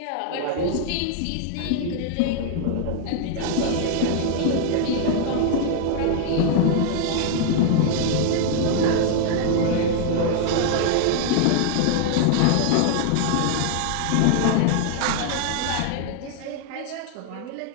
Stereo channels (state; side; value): different; both; correlation 0.00